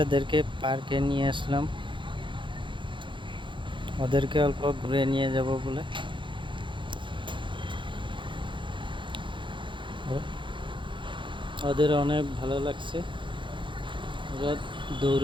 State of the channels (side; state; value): left; late; 0.23 ms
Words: পার্কে নিয়ে আসলাম, ওদেরকে অল্প ঘুরে নিয়ে যাব বলে। ওদের অনেক ভালো লাগছে, ওরা